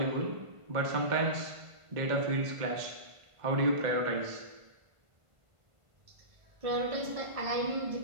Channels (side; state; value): left; late; 1.5 ms